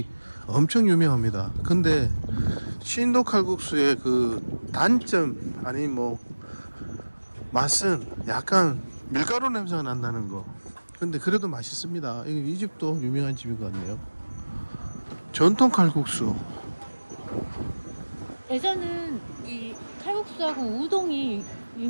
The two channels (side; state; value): both; inverted; correlation -1.00